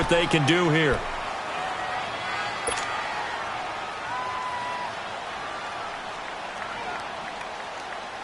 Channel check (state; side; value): identical; both; correlation 1.00